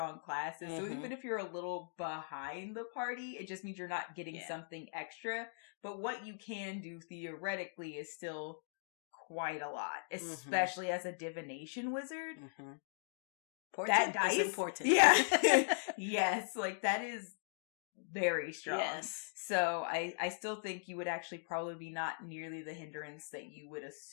classes. So even if you're a little behind the party, it just means you're not getting something extra. But what you can do theoretically is still quite a lot, especially as a divination wizard. That dice is important. Yeah. Yes, like that is very strong. Yes. So I still think you would actually probably be not nearly the hindrance that you would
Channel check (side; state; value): right; silent; digital silence